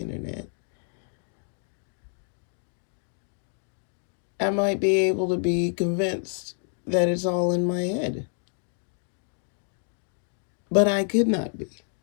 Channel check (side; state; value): right; silent; 55 dB below the other